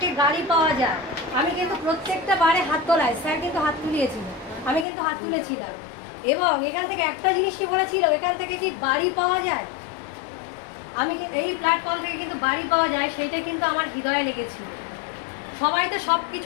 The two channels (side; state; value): right; drops out; at 4.9 s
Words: গাড়ি পাওয়া যায়। আমি কিন্তু প্রত্যেকটা বারে হাত তোলাই, স্যার কিন্তু হাত তুলিয়েছিল, আমি কিন্তু হাত তুলেছিলাম। এবং এখান থেকে একটা জিনিসই বলেছিল, এখান থেকে কি বাড়ি পাওয়া যায়, আমি এই প্ল্যাটফর্ম থেকে কিন্তু বাড়ি পাওয়া যায়, সেইটা কিন্তু আমার হৃদয়ে লেগেছিল। সবাই তো সব